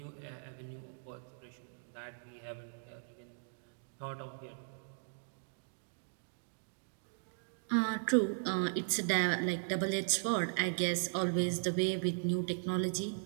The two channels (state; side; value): silent; left; digital silence